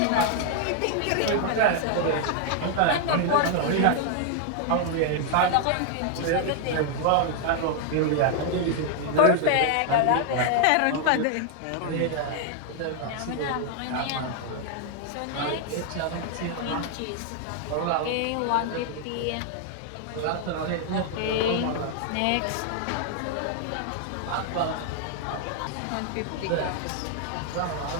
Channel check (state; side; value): different; both; correlation 0.00